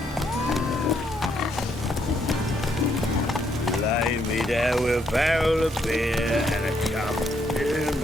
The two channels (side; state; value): both; normal; correlation 0.73